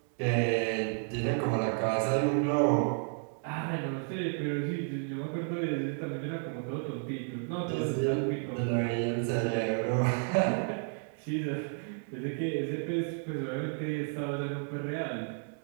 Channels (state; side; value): silent; left; 55 dB below the other